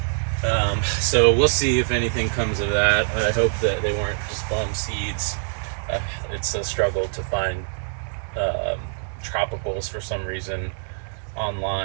So we'll see if anything comes of that. I hope that they weren't just bum seeds. It's a struggle to find tropicals for some reason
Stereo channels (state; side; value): silent; left; digital silence